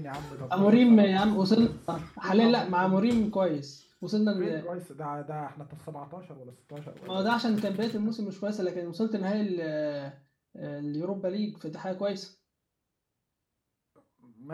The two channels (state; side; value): identical; both; correlation 1.00